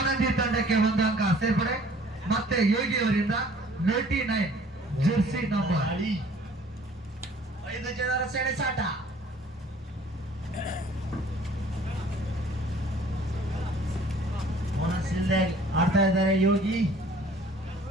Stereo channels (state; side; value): normal; both; correlation 0.54